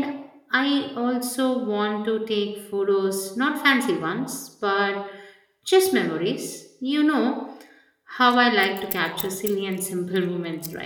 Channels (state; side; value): identical; both; correlation 1.00